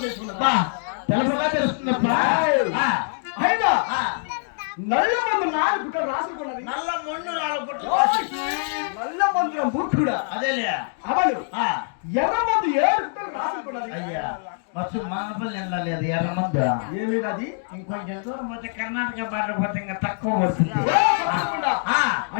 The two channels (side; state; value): right; silent; 63 dB below the other